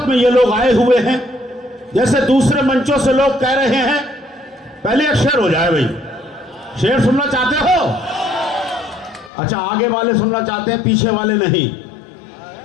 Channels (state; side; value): drops out; right; at 9.3 s